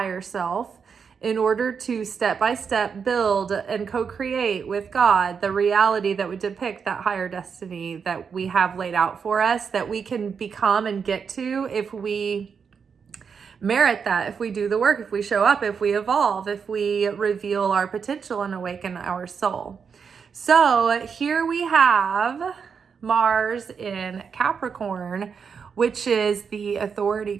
self in order to step by step build and co-create with God the reality that would depict that higher destiny that we have laid out for us, that we can become and get to if we merit that, if we do the work, if we show up, if we evolve, if we reveal our potential and awaken our soul. So here we have Mars in Capricorn, which is the authority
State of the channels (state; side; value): quieter; left; 6.3 dB